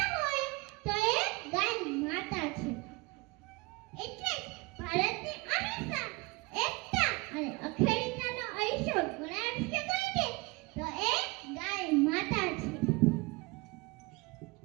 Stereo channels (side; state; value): left; quieter; 25.8 dB